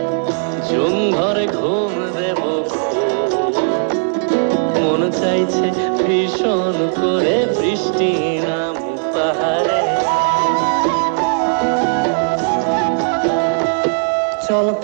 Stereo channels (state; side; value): silent; left; digital silence